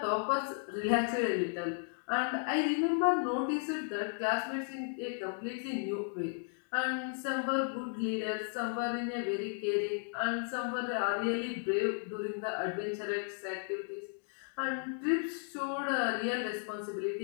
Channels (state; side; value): silent; right; 55 dB below the other